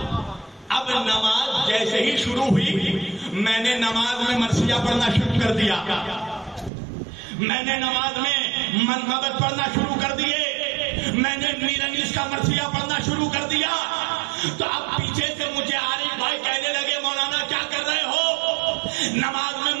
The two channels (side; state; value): left; drops out; at 6.7 s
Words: اب نماز جیسے ہی شروع ہوئی میں نے نماز میں مرثیہ پڑھنا شروع کر دیا. میں نے نماز میں منقبت پڑھنا شروع کر دیے. میں نے میر انیس کا مرثیہ پڑھنا شروع کر دیا. تو اب پیچھے سے مجھے عارف بھائی کہنے لگے مولانا کیا کر رہے ہو؟ نماز میں